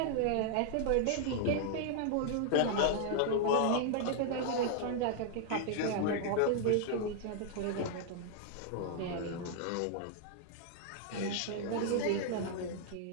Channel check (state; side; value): different; both; correlation 0.00